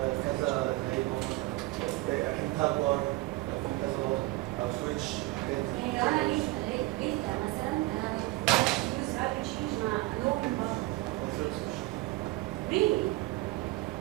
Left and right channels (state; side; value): quieter; left; 20.0 dB